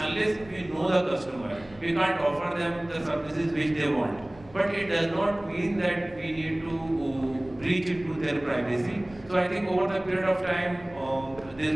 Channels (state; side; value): noise; right; rumble, 22 dB below the sound